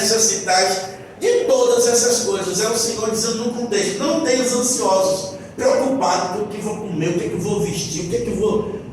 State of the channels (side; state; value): both; identical; correlation 1.00